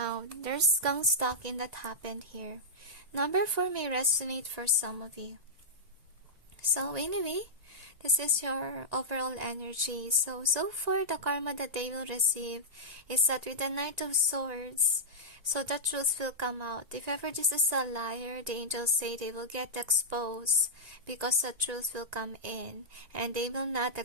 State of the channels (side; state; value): left; late; 1.9 ms